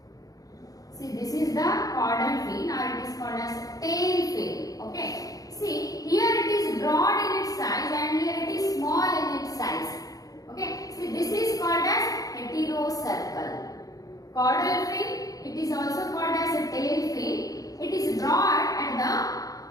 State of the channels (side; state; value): right; late; 0.17 ms